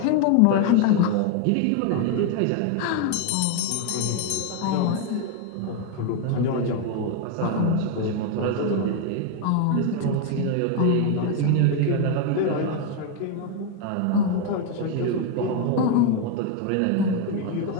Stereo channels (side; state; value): both; different; correlation 0.01